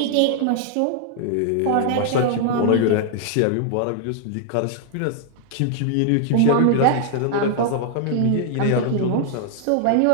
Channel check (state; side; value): different; both; correlation 0.00